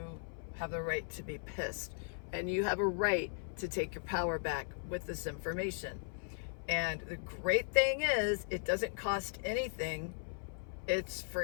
have the right to be pissed, and you have a right to take your power back with this information. And the great thing is, it doesn't cost anything. It's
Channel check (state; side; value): silent; right; 53 dB below the other